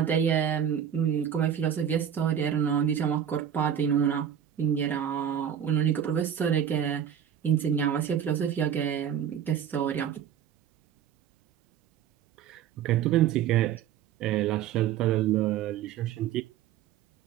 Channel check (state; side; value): quieter; left; 9.2 dB